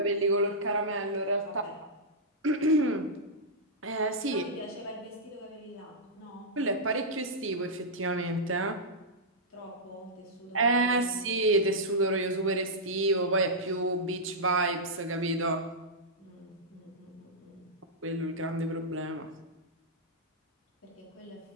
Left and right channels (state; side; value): normal; both; correlation -0.10